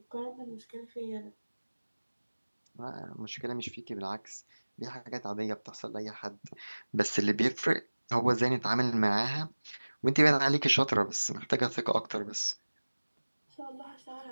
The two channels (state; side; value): inverted; both; correlation -1.00